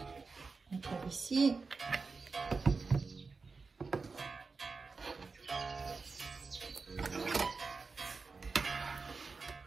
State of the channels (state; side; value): quieter; left; 4.4 dB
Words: On tape ici.